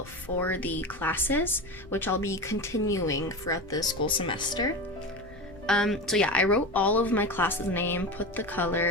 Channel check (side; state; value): left; noise; rumble, 21 dB below the sound